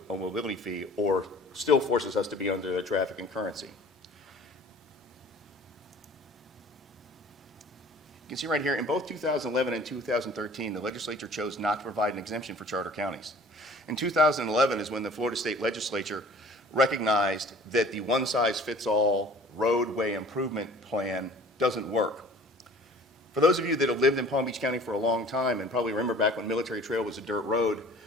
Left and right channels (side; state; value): both; normal; correlation 0.49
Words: mobility fee, or still forces us to be under the traffic and currency. You can see right here, in both 2011 and 2013, the legislature chose not to provide an exemption for charter counties. In 2011 is when the Florida State Legislature recognized that the one-size-fits-all roadway improvement plan doesn't work. For those of you that have lived in Palm Beach County for a long time and probably remember back when Military Trail was a dirt road,